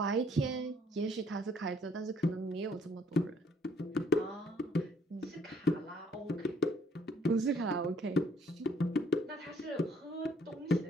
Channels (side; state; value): both; normal; correlation 0.64